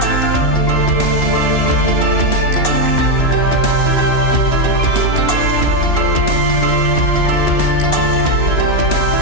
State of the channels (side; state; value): right; late; 3.0 ms